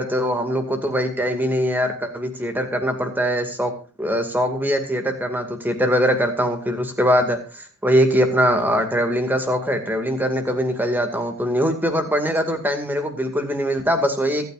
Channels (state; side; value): normal; both; correlation 0.67